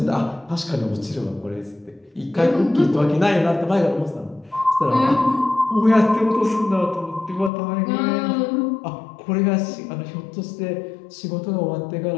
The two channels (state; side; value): drops out; right; at 7.5 s